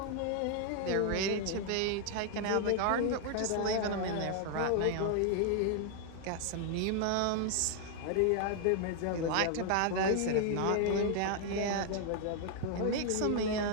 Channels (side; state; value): both; different; correlation 0.00